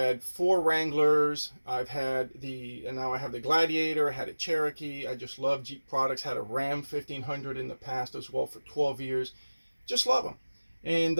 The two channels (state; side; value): inverted; both; correlation -1.00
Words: 4 Wranglers. And now I have the Gladiator. I had a Cherokee. I just love Jeep products. Had a Ram 1500 in the past as well for 12 years. Just love them.